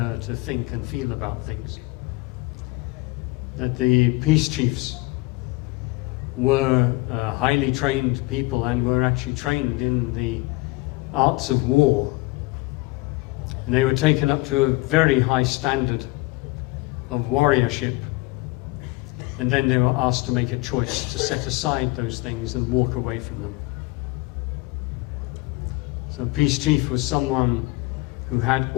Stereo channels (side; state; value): right; quieter; 22.6 dB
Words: to think and feel about things. That the peace chiefs were highly trained people and were actually trained in the arts of war. And they were taken up to a very high standard of warriorship. And then they were asked to make a choice to set aside those things and walk away from them. So peace chief was someone who had